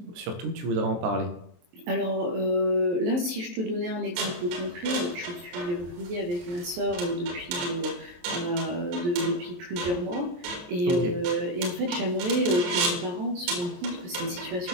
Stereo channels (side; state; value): left; late; 23 ms